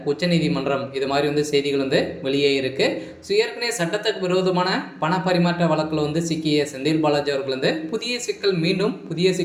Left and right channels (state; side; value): identical; both; correlation 1.00